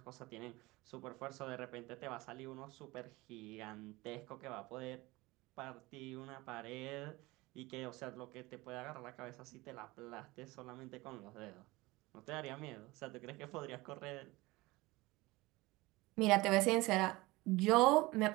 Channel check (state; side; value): quieter; left; 21.3 dB